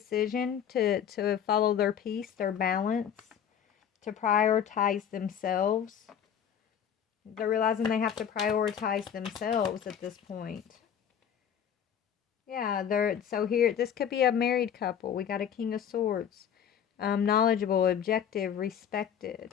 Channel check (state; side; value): quieter; right; 8.6 dB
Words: to follow their peace, their balance, to prioritize themselves. They're realizing they have to prioritize themselves at this point. Yeah, they're so here. This could be a married couple. We got a King of Swords. Knowledgeable, objective,